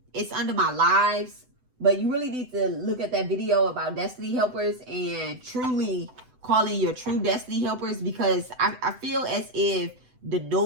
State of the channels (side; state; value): left; late; 7.9 ms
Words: It's under my lives, but you really need to look at that video about destiny helpers and truly calling your true destiny helpers, because I feel as if the